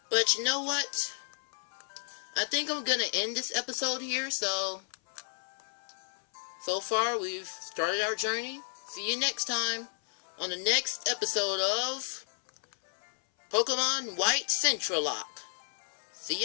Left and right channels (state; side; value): silent; right; 56 dB below the other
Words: But you know what? I think I'm gonna end this episode here. So far we've started our journey. See you next time on the next episode of Pokemon White Centralocke. See